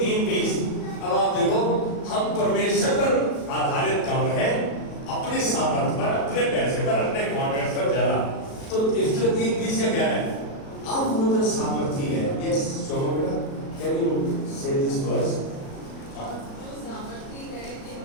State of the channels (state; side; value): late; right; 37 ms